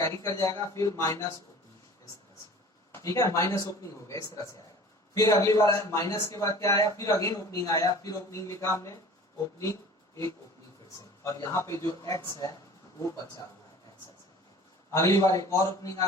कर जाएगा, फिर माइनस ओपनिंग, इस तरह से, ठीक है, माइनस ओपनिंग हो गया, इस तरह से आएगा। फिर अगली बार आया माइनस के बाद क्या आया, फिर अगेन ओपनिंग आया, फिर ओपनिंग लिखा हमने, ओपनिंग, एक ओपनिंग फिर से, और यहाँ पे जो x है वो बचा हुआ है, x। अगली बार एक और ओपनिंग आ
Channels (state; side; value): normal; both; correlation 0.44